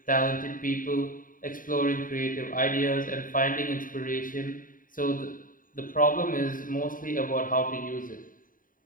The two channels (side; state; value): right; late; 0.40 ms